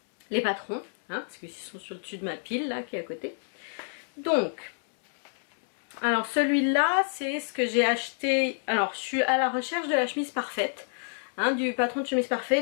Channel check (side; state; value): right; silent; digital silence